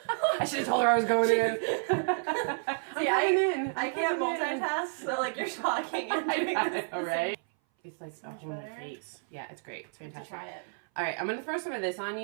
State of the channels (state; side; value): silent; left; 57 dB below the other